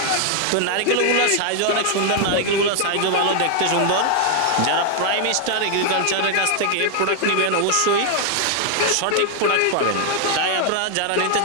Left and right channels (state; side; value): different; both; correlation 0.00